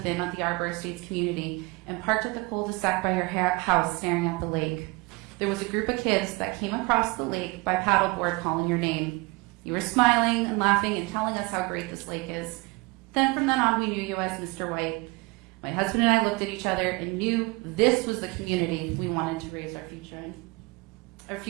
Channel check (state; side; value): quieter; left; 25.7 dB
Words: them at the Arbor Estates community and parked at the cul-de-sac by your house staring at the lake. There was a group of kids that came across the lake by paddleboard calling your name. You were smiling and laughing and telling us how great this lake is. Then from then on, we knew you as Mr. White. My husband and I looked at each other and knew this was the community we wanted to raise our